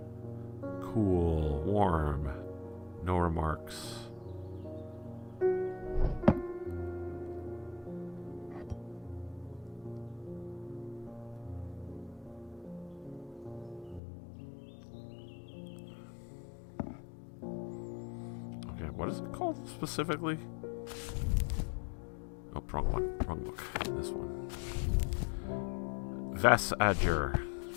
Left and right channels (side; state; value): right; drops out; at 14.0 s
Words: cool, warm, no remarks. Okay, what is it called specifically? Oh, wrong one. Wrong book. This one. Vestiger.